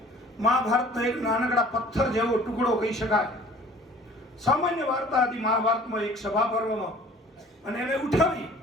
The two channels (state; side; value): normal; both; correlation 0.50